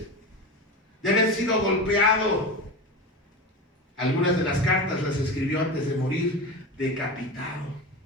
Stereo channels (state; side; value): normal; both; correlation 0.25